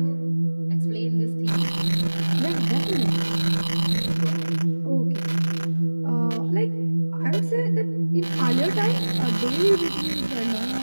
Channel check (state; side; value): inverted; both; correlation -1.00